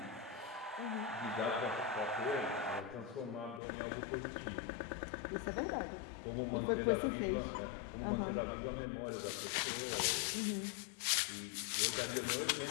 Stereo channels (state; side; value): drops out; right; at 3.6 s